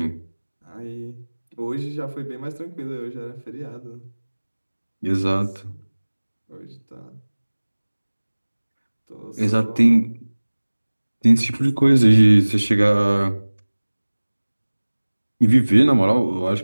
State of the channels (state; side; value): inverted; both; correlation -1.00